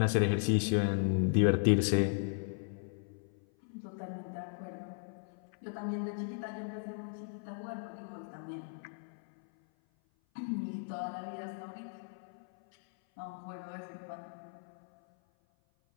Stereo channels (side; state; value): right; silent; 54 dB below the other